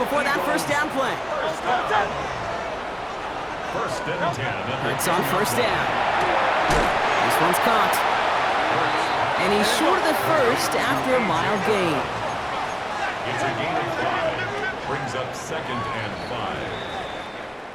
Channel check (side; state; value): both; identical; correlation 1.00